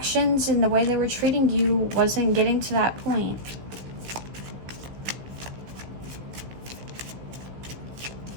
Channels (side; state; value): left; late; 15 ms